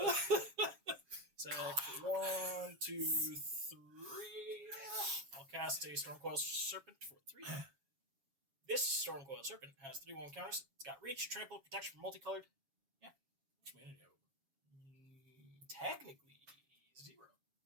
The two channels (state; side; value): late; left; 7.3 ms